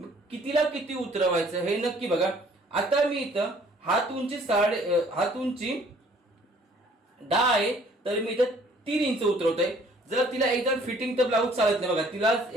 कितीला किती उतरवायचं हे नक्की बघा. आता मी इथं हात उंची हात उंची 10 आहे, तर मी इथं 3 इंच उतरवतोय. जर तिला एकदम फिटिंग तर ब्लाऊज चालत नाही बघा, तिला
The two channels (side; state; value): both; normal; correlation 0.58